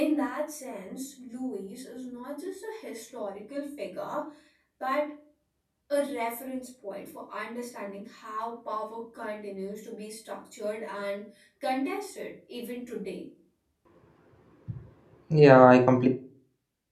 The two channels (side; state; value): both; identical; correlation 1.00